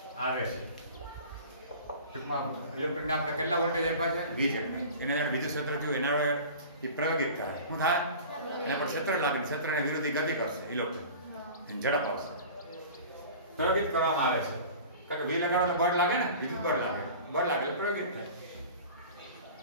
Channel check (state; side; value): inverted; both; correlation -0.39